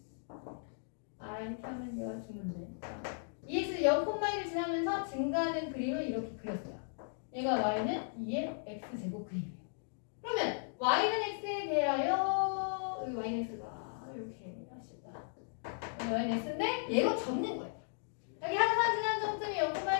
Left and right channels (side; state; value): right; silent; digital silence